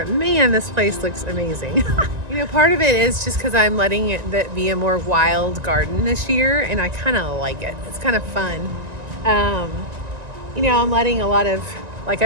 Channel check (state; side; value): late; left; 1.9 ms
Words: man, this place looks amazing. Part of it is just because I'm letting it be a more wild garden this year, and I kind of like it. It's kind of fun. I'm letting a lot of, like